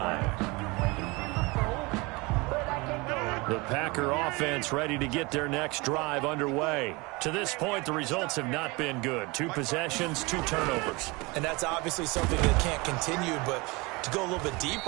The Packer offense ready to get their next drive underway. To this point, the results have not been good. 2 possessions, 2 turnovers. And that's obviously something that can't continue, but to go a little bit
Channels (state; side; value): quieter; left; 25.3 dB